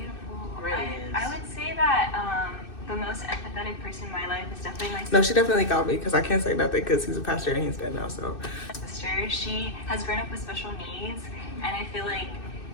Really is. I would say that the most empathetic person in my life is definitely my sister. no, she definitely got me because I can't say nothing because he's a pastor and he's dead now. So She has grown up with special needs, and I feel like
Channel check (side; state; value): right; late; 2.6 ms